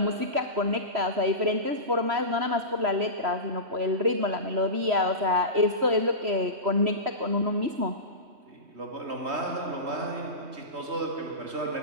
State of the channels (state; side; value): late; left; 3.0 ms